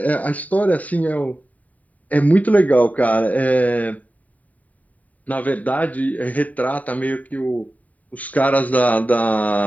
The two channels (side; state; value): right; late; 0.072 ms